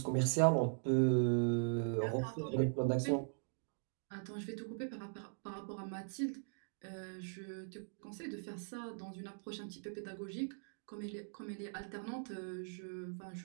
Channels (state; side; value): silent; left; digital silence